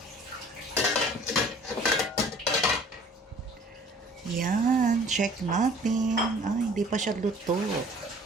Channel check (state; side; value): normal; both; correlation 0.51